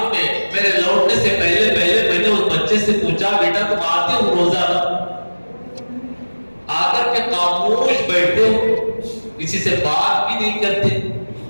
میں میرے لوٹنے سے پہلے میں نے اس بچے سے پوچھا، بیٹا تم آتے ہو روزانہ؟ آ کر کے خاموش بیٹھتے ہو، کسی سے بات بھی نہیں کرتے،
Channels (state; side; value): inverted; both; correlation -1.00